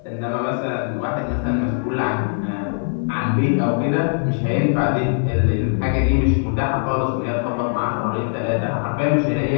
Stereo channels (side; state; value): right; silent; 61 dB below the other